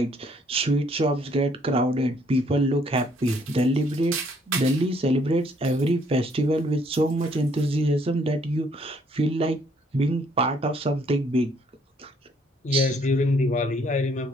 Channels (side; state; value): both; normal; correlation 0.65